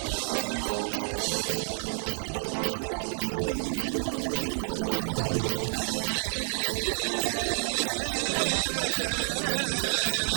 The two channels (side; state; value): left; silent; digital silence